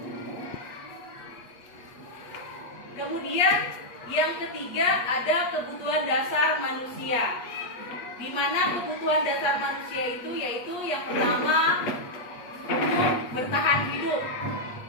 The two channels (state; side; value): late; right; 8.4 ms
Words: Kemudian yang ketiga ada kebutuhan dasar manusia, di mana kebutuhan dasar manusia itu yaitu yang pertama bertahan hidup,